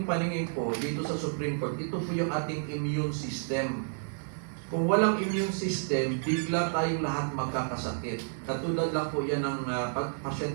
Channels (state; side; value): silent; left; 56 dB below the other